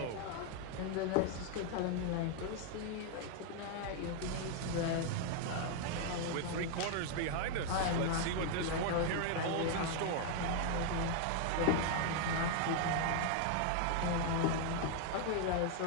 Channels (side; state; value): both; different; correlation 0.00